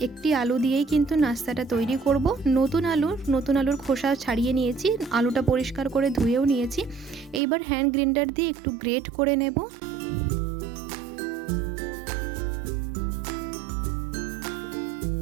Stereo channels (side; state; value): left; drops out; at 7.4 s